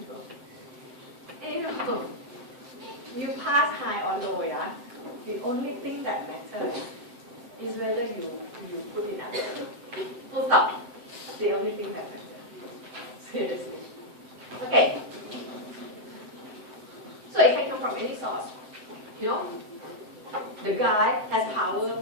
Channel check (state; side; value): late; left; 7.7 ms